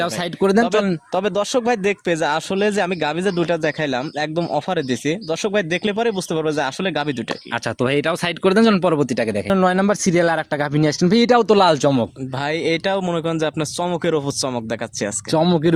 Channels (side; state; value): both; identical; correlation 1.00